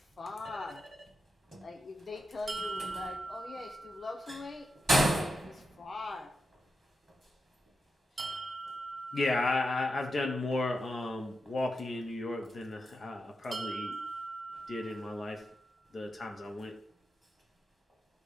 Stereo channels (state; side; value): normal; both; correlation 0.88